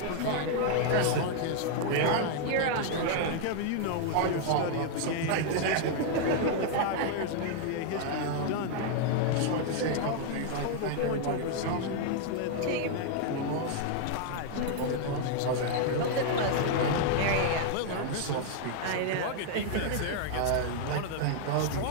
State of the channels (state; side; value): different; both; correlation 0.00